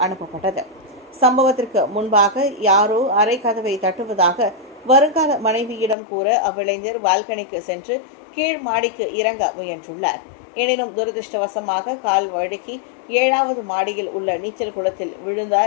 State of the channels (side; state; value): right; drops out; at 6.0 s